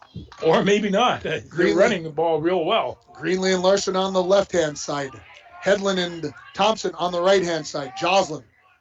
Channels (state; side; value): identical; both; correlation 1.00